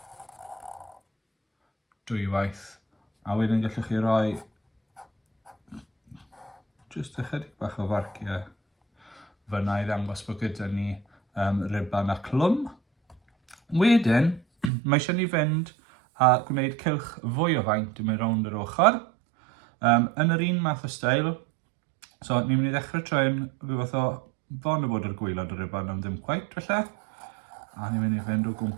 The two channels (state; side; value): drops out; left; at 14.7 s